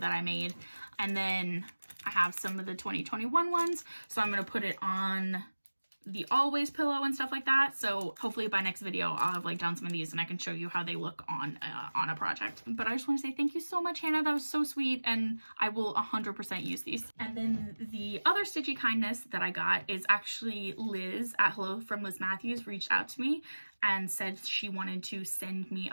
I made. And then I have some of the 2021 ones. So I'm going to put it on the always pillow and stuff like that. So hopefully by next video I'll have like done some of these and I can show you how they look on a project. But I just want to say thank you so much, Hannah. That was so sweet, and I will 100% use these. And then the other Stitchy Kindness that I got is actually Liz at Hello from Liz Mathews reached out to me and said she wanted to send me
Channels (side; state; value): both; inverted; correlation -1.00